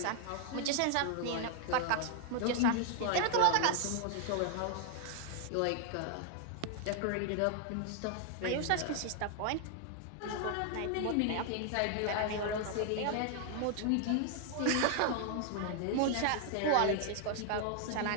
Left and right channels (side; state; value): both; different; correlation 0.00